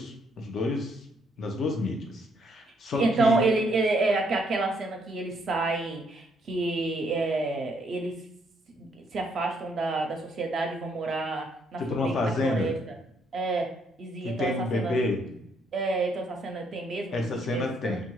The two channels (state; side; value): normal; both; correlation 0.71